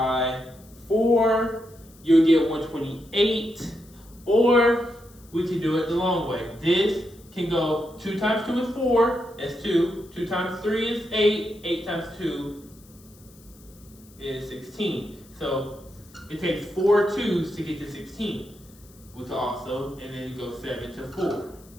4. You'll get 128. Or we can do it the long way. This can go 2 times 2 is 4. That's 2. 2 times 3 is 8. 8 times 2 is 16. So it takes 4 2s to get to 16. We can also, and then you go 7 to 4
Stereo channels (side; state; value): left; noise; hiss, 26 dB below the sound